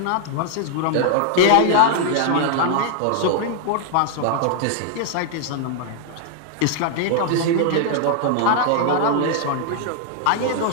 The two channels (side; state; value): both; different; correlation -0.01